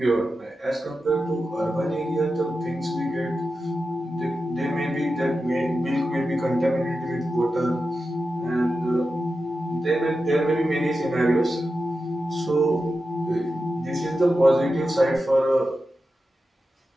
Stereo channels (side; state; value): both; normal; correlation 0.91